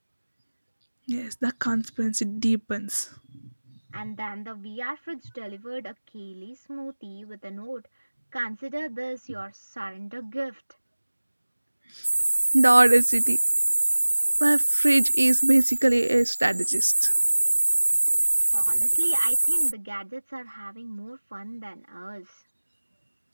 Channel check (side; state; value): both; inverted; correlation -1.00